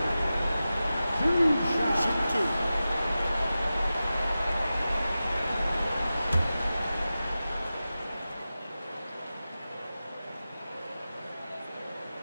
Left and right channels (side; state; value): both; inverted; correlation -0.94